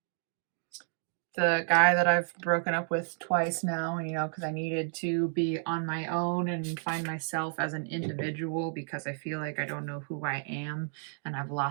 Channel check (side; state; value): left; silent; digital silence